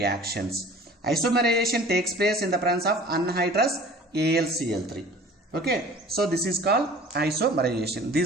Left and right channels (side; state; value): both; normal; correlation 0.46